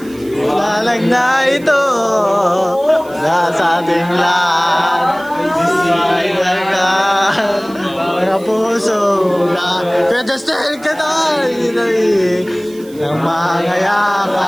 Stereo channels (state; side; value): noise; right; hiss, 23 dB below the sound